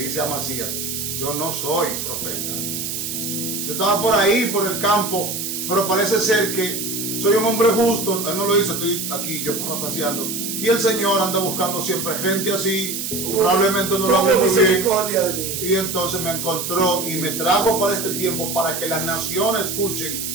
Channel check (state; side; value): noise; right; hiss, 4 dB below the sound